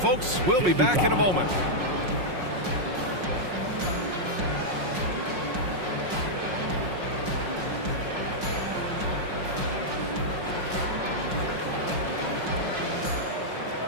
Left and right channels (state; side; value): late; left; 5.5 ms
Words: We'll be back in a moment.